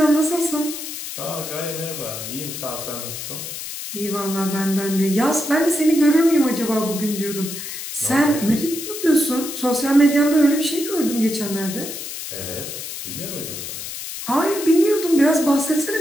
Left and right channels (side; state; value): left; noise; hiss, 8 dB below the sound